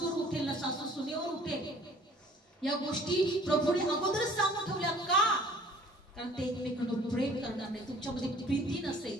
उठेल ना सासू सुनेवर उठेल. या गोष्टी प्रभूने अगोदरच सांगून ठेवल्या. का? कारण ते एकमेकांना प्रेम करणार नाही. तुमच्यामध्ये प्रीती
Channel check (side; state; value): both; normal; correlation 0.53